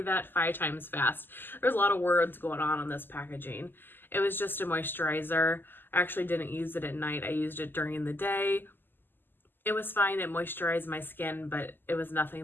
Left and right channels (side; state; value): right; late; 0.094 ms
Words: that 5 times fast. There's a lot of words going on this packaging. It was just a moisturizer. I actually didn't use it at night. I used it during the day. It was fine. It moisturized my skin, but it was